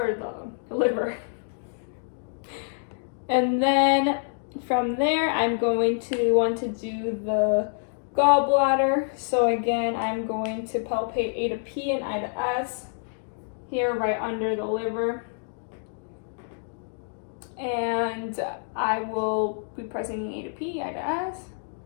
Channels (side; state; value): right; silent; digital silence